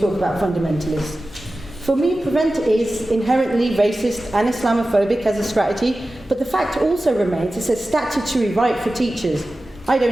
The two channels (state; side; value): normal; both; correlation 0.95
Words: about fundamentalists. For me, Prevent is inherently racist and Islamophobic as a strategy, but the fact also remains it's a statutory right for teachers. I